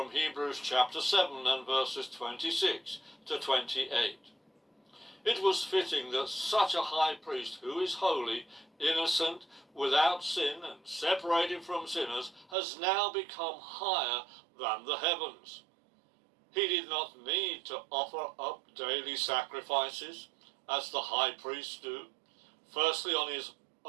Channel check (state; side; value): drops out; left; at 12.6 s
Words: Hebrews chapter 7 and verses 26 to 28. It was fitting that such a high priest who is holy, innocent, without sin and separated from sinners has now become higher than the heavens. He did not need to offer up daily sacrifices as the high priests do, firstly